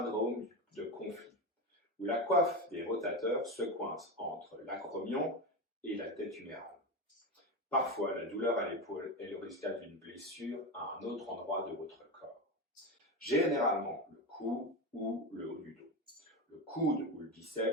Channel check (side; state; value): both; normal; correlation 0.18